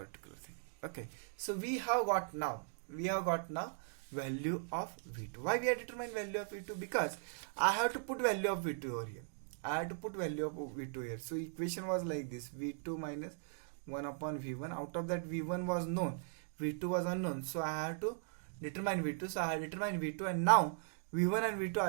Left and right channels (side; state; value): left; silent; digital silence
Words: thing. Okay, so we have got now value of V2. Why we are determining value of V2? Because I have to put value of V2 over here. So equation was like this: V2 minus 1 upon V1. Out of that, V1 was known, V2 was unknown. So I have to determine V2. So I have determined V2, and now V1 and V2